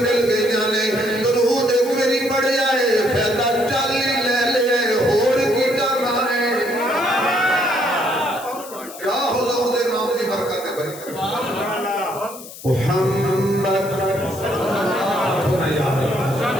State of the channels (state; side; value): noise; left; hiss, 15 dB below the sound